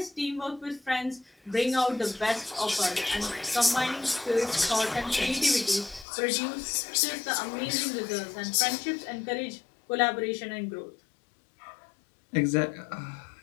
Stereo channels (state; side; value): drops out; right; at 6.1 s